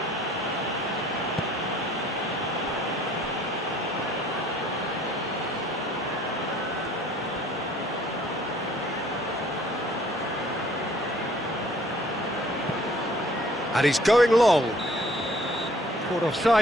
And he's going long. Caught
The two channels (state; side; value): normal; both; correlation 0.57